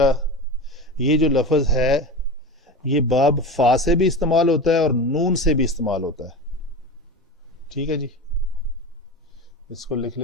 یہ جو لفظ ہے یہ باب فا سے بھی استعمال ہوتا ہے اور نون سے بھی استعمال ہوتا ہے. ٹھیک ہے جی, اس کو لکھ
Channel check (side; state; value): both; normal; correlation 0.27